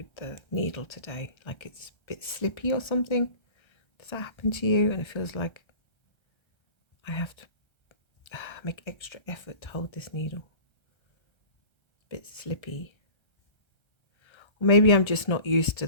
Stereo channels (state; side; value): late; right; 1.3 ms